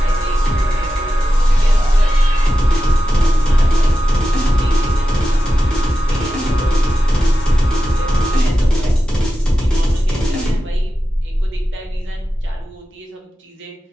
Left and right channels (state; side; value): normal; both; correlation 0.92